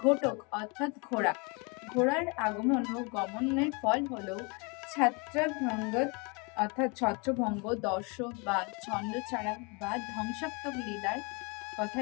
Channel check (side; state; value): right; quieter; 31.2 dB